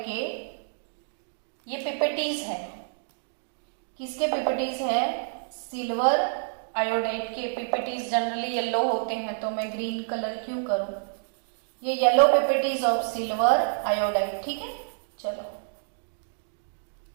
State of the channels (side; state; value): left; silent; digital silence